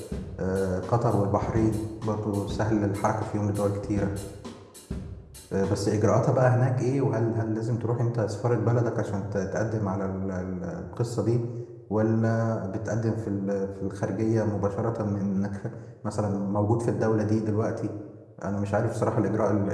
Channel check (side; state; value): both; identical; correlation 1.00